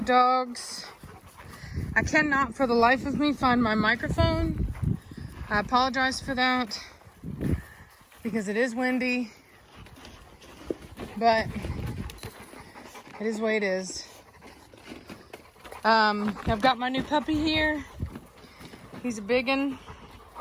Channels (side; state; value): both; identical; correlation 1.00